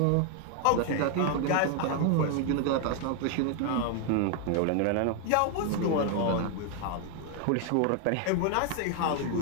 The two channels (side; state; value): both; different; correlation 0.01